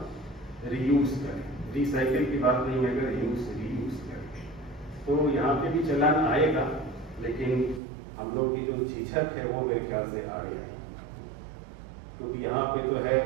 रीयूज करें। रिसाइकिल की बात नहीं, मैं रीयूज करें। तो यहाँ पे भी चलान आएगा, लेकिन हम लोग की जो झिझक है वो मेरे ख्याल से आगे आएगी। क्योंकि यहाँ पे तो है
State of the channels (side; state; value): left; drops out; at 7.8 s